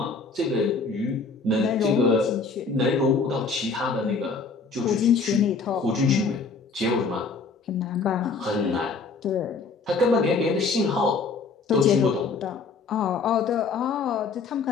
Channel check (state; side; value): quieter; right; 4.5 dB